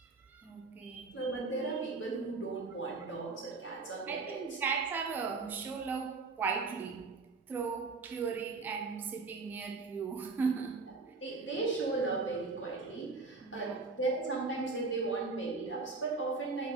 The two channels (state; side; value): quieter; left; 4.1 dB